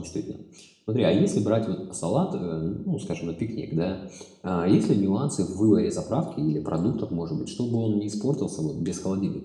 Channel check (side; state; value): both; identical; correlation 1.00